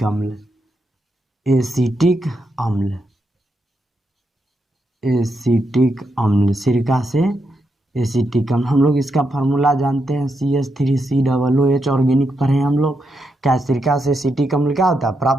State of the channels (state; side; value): normal; both; correlation 0.83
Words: अम्ल। एसिटिक अम्ल सिरका से एसिटिक अम्ल। हम लोग इसका फार्मूला जानते हैं, CH3COOH ऑर्गेनिक पढ़े हैं हम लोग। क्या सिरका से एसिटिक अम्ल क्या होता है,